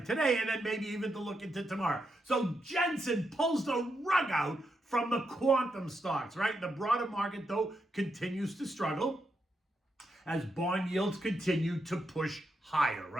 today, and then maybe even to look into tomorrow. So Jensen pulls the rug out from the quantum stocks, right? The broader market, though, continues to struggle as bond yields continue to push higher,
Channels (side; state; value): both; normal; correlation 0.83